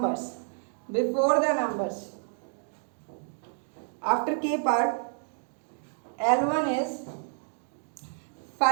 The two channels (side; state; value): left; silent; 58 dB below the other